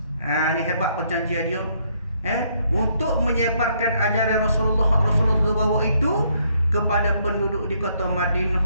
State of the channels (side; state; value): both; inverted; correlation -0.70